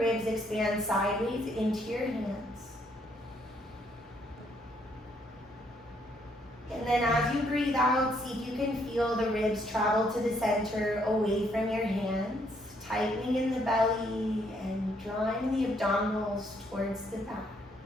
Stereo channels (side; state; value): both; normal; correlation 0.70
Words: expand sideways into your hands. And then as you breathe out, see if you can feel the ribs travel to the center away from your hands, tightening in the belly and drawing the abdominals towards the back.